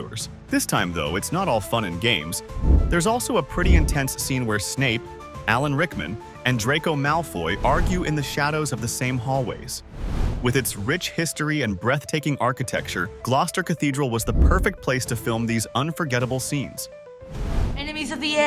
This time, though, it's not all fun and games. There's also a pretty intense scene where Snape, Alan Rickman, and Draco Malfoy argue in the shadows of the same hallways. With its rich history and breathtaking architecture, Gloucester Cathedral was the perfect place to film these unforgettable scenes. Enemies of the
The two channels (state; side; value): identical; both; correlation 1.00